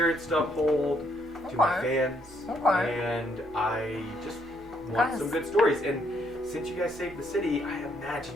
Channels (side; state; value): both; normal; correlation 0.71